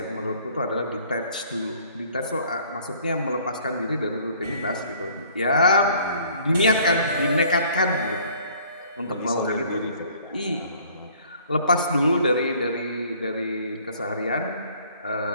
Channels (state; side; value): inverted; both; correlation -0.56